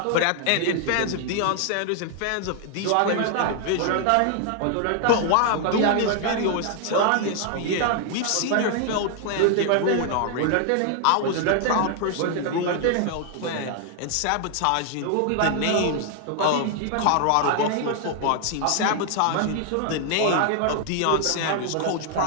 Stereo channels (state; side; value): different; both; correlation 0.00